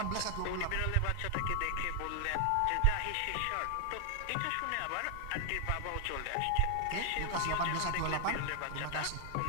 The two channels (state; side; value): different; both; correlation 0.00